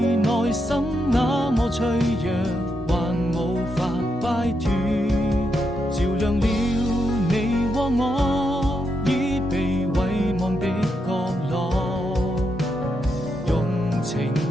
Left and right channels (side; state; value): both; normal; correlation 0.82